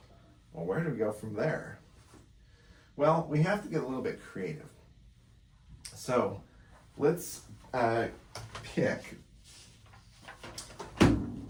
Well, where do we go from there? Well, we have to get a little bit creative. So let's pick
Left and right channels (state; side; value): identical; both; correlation 1.00